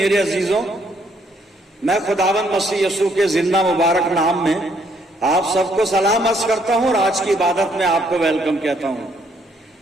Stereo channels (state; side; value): normal; both; correlation 0.69